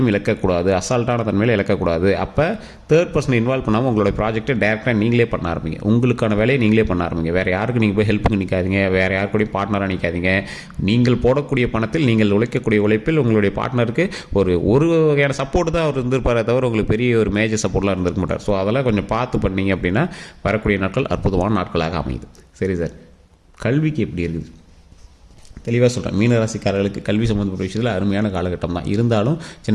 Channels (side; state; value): both; identical; correlation 1.00